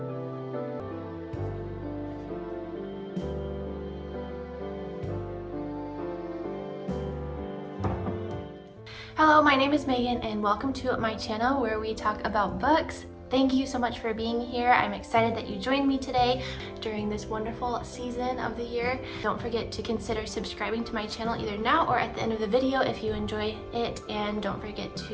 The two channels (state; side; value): identical; both; correlation 1.00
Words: Hello, my name is Megan and welcome to my channel where we talk about books. Thank you so much for being here. I'm excited that you joined me today during this wonderful season of the year. Don't forget to consider subscribing to my channel either now or at the end of the video if you enjoy it, and don't forget